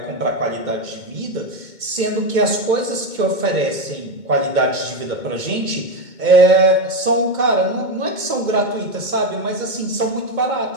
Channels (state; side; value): late; left; 2.2 ms